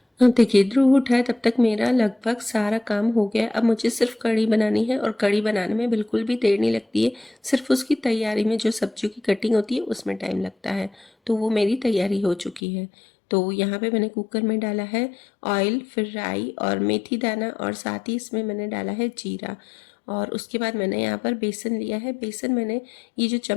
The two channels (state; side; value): drops out; right; at 12.6 s